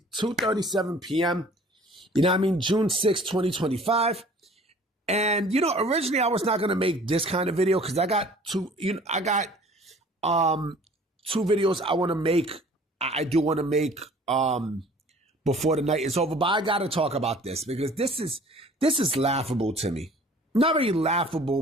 p.m. You know what I mean? June 6th, 2025. And, originally I was not going to make this kind of video because I got two videos I want to make. I do want to make before the night is over. But I got to talk about this because this is laughable to me. Not really laughable,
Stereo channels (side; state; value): both; normal; correlation 0.51